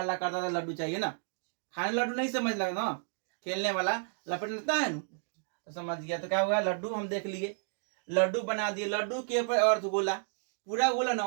करता था लड्डू चाहिए ना। खाने लड्डू नहीं समझ लगा ना, खेलने वाला लपट लेता है ना, तो समझ गया। तो क्या हुआ? लड्डू हम देख लिए, लड्डू बना दिए। लड्डू के ऊपर अर्धगोला, पूरा गोला ना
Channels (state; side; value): silent; left; digital silence